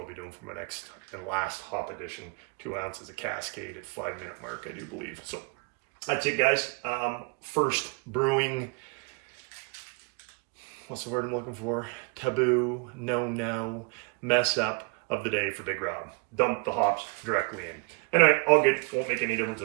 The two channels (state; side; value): quieter; left; 32.0 dB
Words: be doing for my next and last hop edition. 2 ounces of Cascade at 5-minute mark, I do believe. So that's it, guys. First brewing, what's the word I'm looking for? Taboo, no, mess up of the day for Big Robb. Dump the hops directly in. Anyway, all good. Won't make any difference